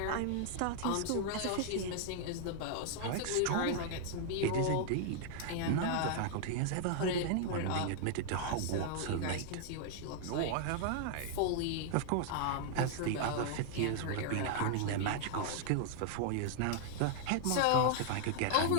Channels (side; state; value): both; different; correlation 0.00